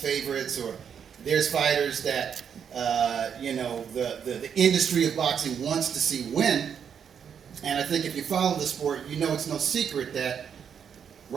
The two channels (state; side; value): quieter; left; 7.7 dB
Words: or there's fighters that the industry of boxing wants to see win. And I think if you follow the sport, you know it's no secret that